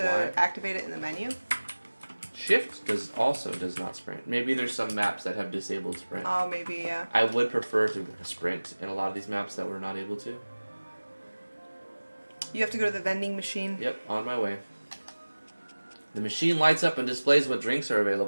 Y. activate it in the menu? Shift does not sprint. Maybe there's some maps that have disabled sprint. Oh, maybe, yeah. I would prefer to sprint in a lot of these maps that we're not able to. You have to go to the vending machine. Yep, on my way. The machine lights up and displays what drinks are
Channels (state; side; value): inverted; both; correlation -1.00